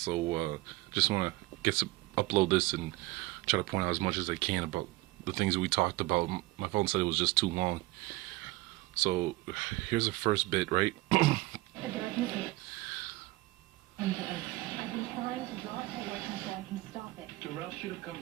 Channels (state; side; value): quieter; left; 20.3 dB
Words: just want to upload this and try to point out as much as I can about the things that we talked about. My phone said it was just too long. So here's the first bit, right? I've been trying to draw it away so I can stop it. Darrell should have come